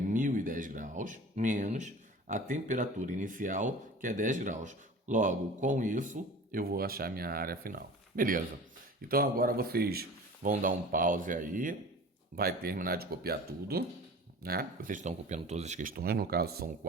graus, menos a temperatura inicial, que é 10 graus. Logo, com isso, eu vou achar minha área final. Beleza. Então, agora vocês vão dar um pause aí. Vai terminar de copiar tudo, né? Vocês estão copiando todas as questões. No caso, são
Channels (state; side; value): normal; both; correlation 0.40